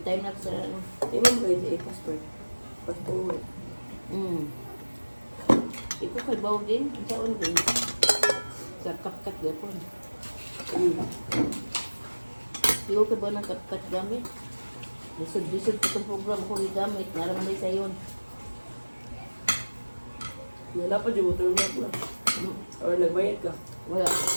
na sa ano. Tingnan mo ito passport. Passport. Ito kay bawo din, ang saon din. Sa kapkat gapon. Ikaw ka ba ng kapkat gamit? Lisod-lisod pa itong program ko gamit. Naraman din sa yun. Wala pa dyan, motor na po. Or nagbayad ka. Wala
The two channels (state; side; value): inverted; both; correlation -1.00